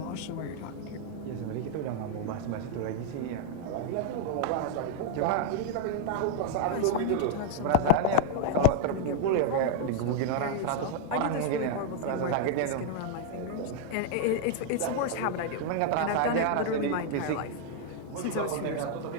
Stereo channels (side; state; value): both; different; correlation -0.01